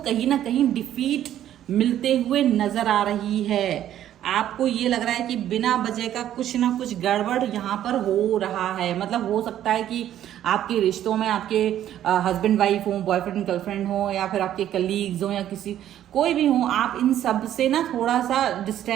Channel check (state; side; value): quieter; left; 11.5 dB